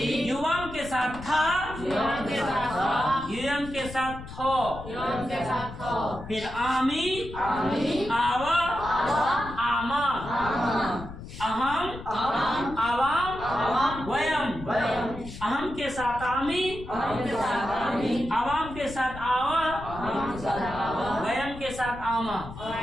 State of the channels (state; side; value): noise; left; rumble, 12 dB below the sound